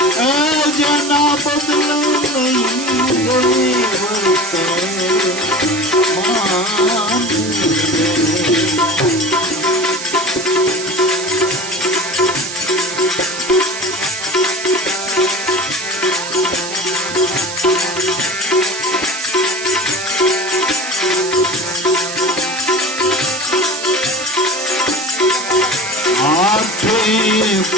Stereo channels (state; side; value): noise; right; hiss, 8 dB below the sound